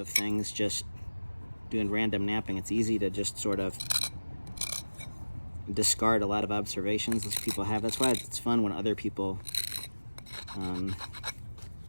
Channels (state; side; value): inverted; both; correlation -1.00